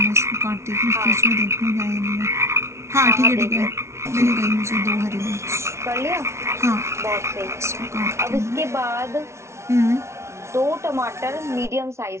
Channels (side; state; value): left; late; 0.13 ms